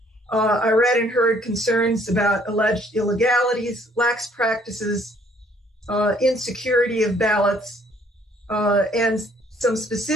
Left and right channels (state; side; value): normal; both; correlation 0.62